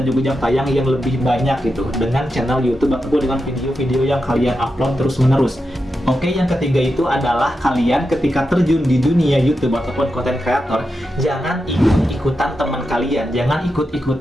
juga jam tayang yang lebih banyak gitu dengan channel YouTube ataupun dengan video-video yang kalian upload terus-menerus. Oke, yang ketiga itu adalah kalian ketika terjun di dunia YouTube ataupun content creator, jangan ikut-ikutan teman kalian, jangan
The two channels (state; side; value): normal; both; correlation 0.88